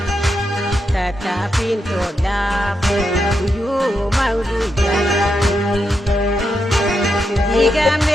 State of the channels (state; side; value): normal; both; correlation 0.84